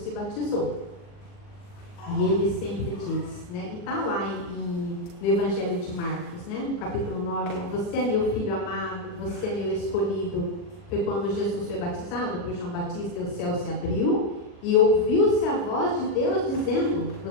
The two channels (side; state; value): right; late; 40 ms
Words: batizou. E ele sempre diz, e está lá no Evangelho de Marcos, no capítulo 9, você é meu filho amado, você é meu escolhido. Foi quando Jesus foi batizado por João Batista e o céu se abriu e ouviu-se a voz de Deus dizendo,